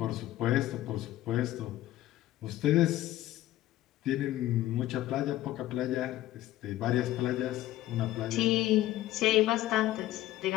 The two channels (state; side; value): quieter; right; 14.7 dB